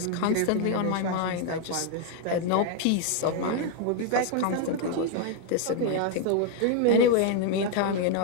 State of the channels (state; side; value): different; both; correlation 0.00